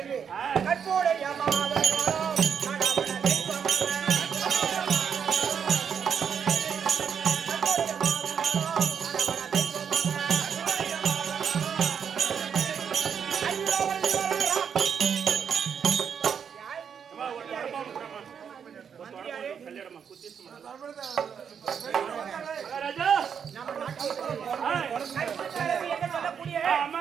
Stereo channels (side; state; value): left; quieter; 7.4 dB